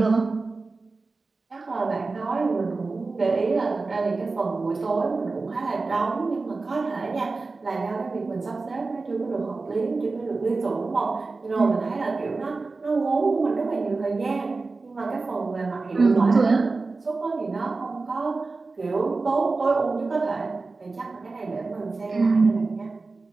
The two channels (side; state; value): left; quieter; 3.8 dB